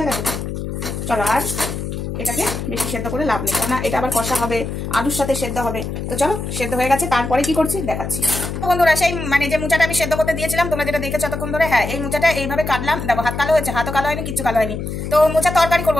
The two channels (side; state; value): left; noise; hum, 5 dB below the sound